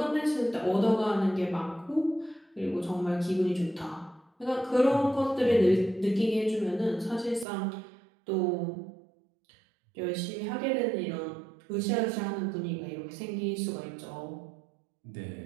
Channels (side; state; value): left; drops out; at 7.5 s